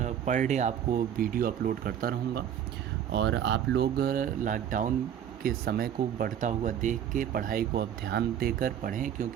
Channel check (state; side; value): quieter; left; 9.6 dB